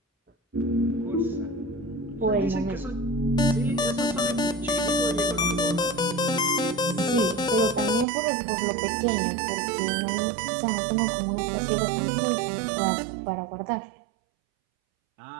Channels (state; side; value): drops out; left; at 8.1 s